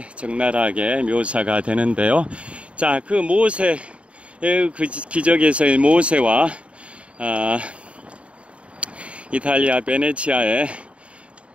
적나라하게 묘사가 되는데요. 자, 그 모세의 그 기적에서의 모세와 이탈리아 베네치아의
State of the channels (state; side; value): late; left; 0.062 ms